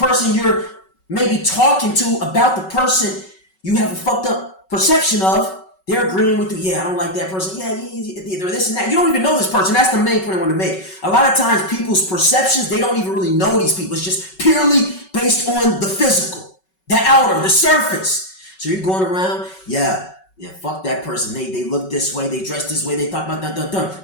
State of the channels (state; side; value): late; right; 5.3 ms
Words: you're maybe talking to about the person you have a fucked up perception of, they're agreeing with you. Yeah, I don't like that person. Yeah, they're this and that. You don't even know this person. That's the main point I want to make. A lot of times people's perceptions, they don't even really know these people. It's just purely based on the physical, the outer, the surface. So you're going around, yeah, fuck that person. They look this way, they dress this way, they talk about